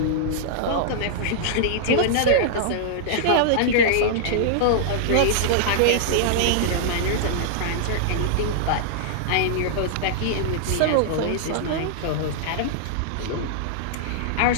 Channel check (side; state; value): both; different; correlation -0.01